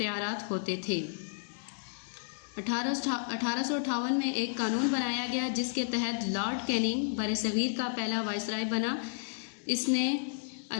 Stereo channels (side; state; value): right; silent; digital silence